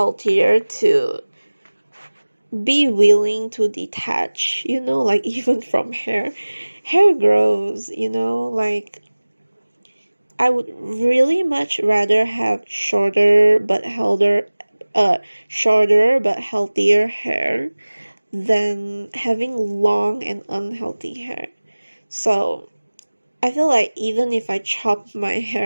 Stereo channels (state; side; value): inverted; both; correlation -1.00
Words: to be willing to detach, like even from hair. Hair grows, like I would really much rather have shorter but healthier hair than having long and unhealthy hair. So I feel like even if I chop my